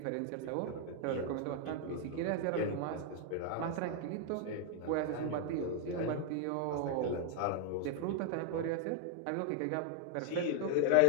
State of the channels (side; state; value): both; different; correlation 0.00